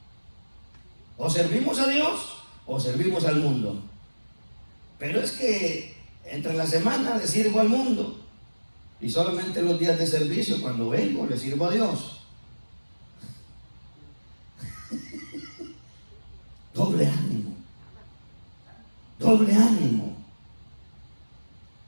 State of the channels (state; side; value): inverted; both; correlation -1.00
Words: O servimos a Dios o servimos al mundo. Pero es que entre la semana le sirvo al mundo. Y solamente los días de servicio, cuando vengo, le sirvo a Dios. Doble ánimo. Doble ánimo.